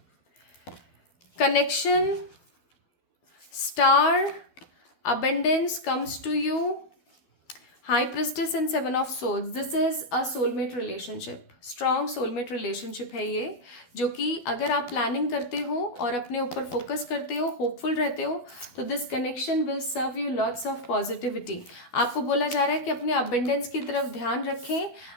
Connection, star, abundance comes to you. High Priestess and Seven of Swords. This is a soulmate relationship. Strong soulmate relationship है ये, जो कि अगर आप planning करते हो और अपने ऊपर फोकस करते हो, होपफुल रहते हो, तो this connection will serve you lots of positivity. आपको बोला जा रहा है कि अपने अबेंडेंस की तरफ ध्यान रखें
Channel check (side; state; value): right; late; 12 ms